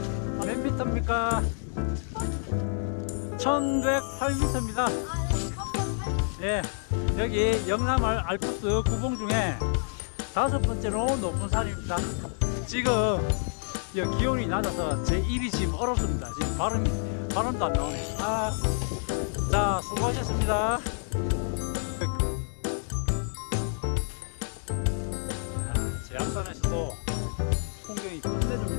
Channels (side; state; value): right; silent; 58 dB below the other